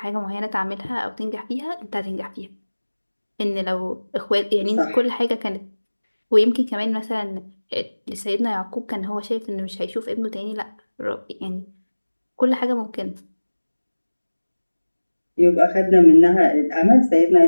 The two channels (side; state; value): both; inverted; correlation -1.00